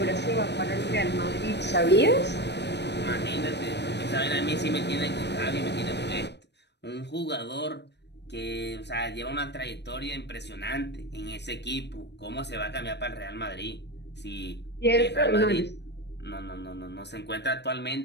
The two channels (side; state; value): right; late; 0.50 ms